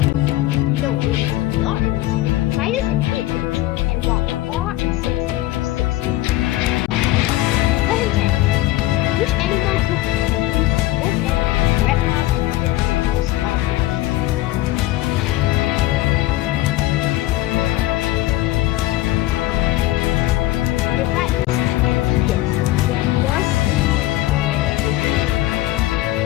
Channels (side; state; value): right; quieter; 16.5 dB